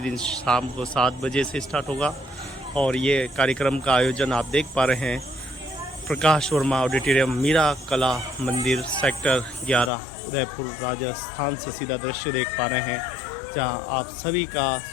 शाम को 7 बजे से स्टार्ट होगा। और ये कार्यक्रम का आयोजन आप देख पा रहे हैं प्रकाश वर्मा ऑडिटोरियम मीरा कला मंदिर सेक्टर 11 उदयपुर राजस्थान से सीधा दृश्य देख पा रहे हैं, जहां आप सभी का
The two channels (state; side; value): drops out; right; at 9.9 s